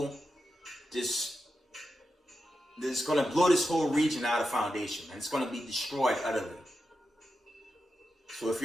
this. It's going to blow this whole region out of foundation, and it's going to be destroyed utterly. So if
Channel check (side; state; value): both; normal; correlation 0.89